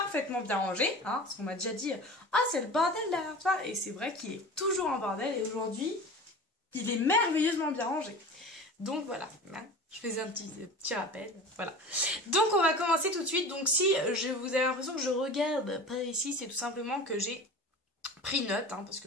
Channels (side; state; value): both; normal; correlation 0.36